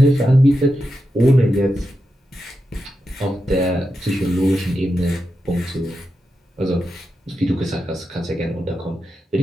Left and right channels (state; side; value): normal; both; correlation 0.88